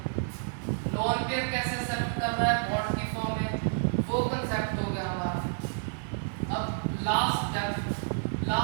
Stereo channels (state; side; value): silent; left; digital silence